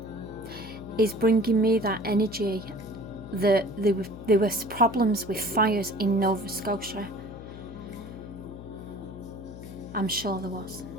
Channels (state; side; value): noise; left; hum, 13 dB below the sound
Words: is bringing me that energy that there was problems with fires in Nova Scotia. I'm sure there was.